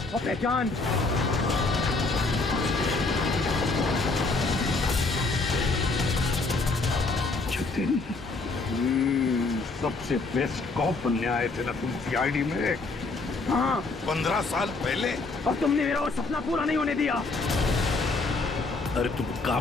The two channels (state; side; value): quieter; right; 3.6 dB